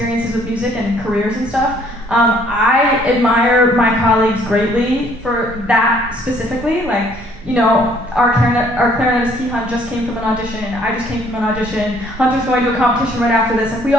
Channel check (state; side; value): normal; both; correlation 0.62